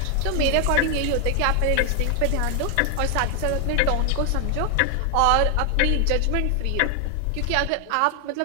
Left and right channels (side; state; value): both; different; correlation 0.00